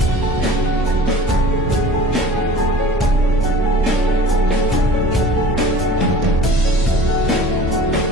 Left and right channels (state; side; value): normal; both; correlation 0.43